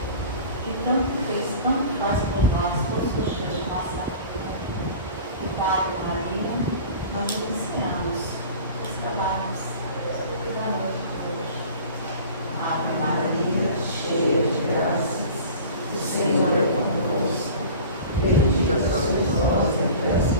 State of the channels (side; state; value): both; inverted; correlation -0.40